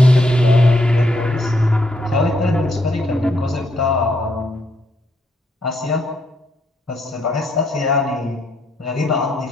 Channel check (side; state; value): both; normal; correlation 0.75